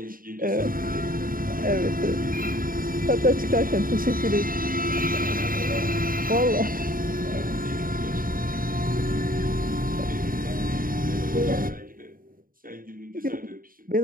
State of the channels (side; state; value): left; late; 0.41 ms